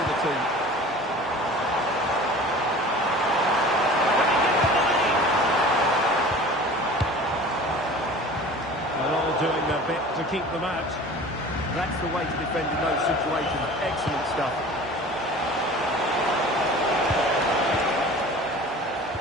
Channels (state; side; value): normal; both; correlation 0.41